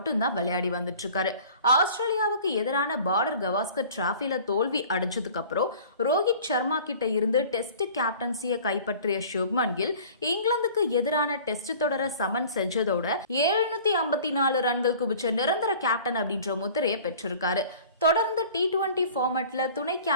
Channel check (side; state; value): both; inverted; correlation -0.46